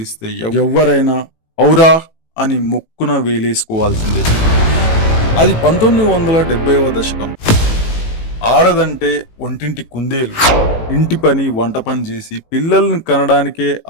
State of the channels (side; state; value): right; late; 18 ms